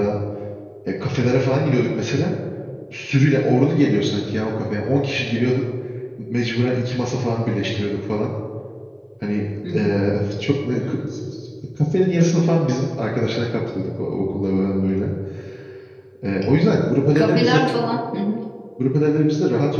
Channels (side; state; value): both; identical; correlation 1.00